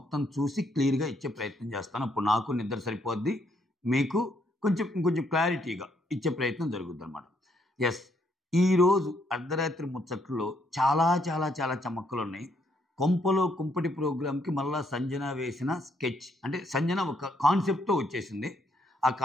చూసి క్లియర్గా ఇచ్చే ప్రయత్నం చేస్తాను. అప్పుడు నాకు నిద్ర సరిపోద్ది, మీకు ఇంకొంచెం క్లారిటీగా ఇచ్చే ప్రయత్నం జరుగుద్ది అనమాట. ఎస్, ఈరోజు అర్ధరాత్రి ముచ్చట్లో చాలా చాలా చాలా చమక్కులు ఉన్నాయి. కొంపలో కుంపటి ప్రోగ్రామ్కి మళ్ళా సంజన వేసిన స్కెచ్, అంటే సంజన ఒక కాన్సెప్ట్తో వచ్చేసింది. ఆ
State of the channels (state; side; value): normal; both; correlation 0.72